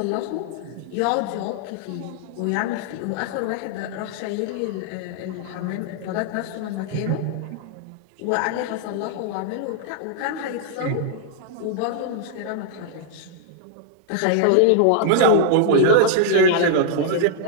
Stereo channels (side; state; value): both; different; correlation -0.01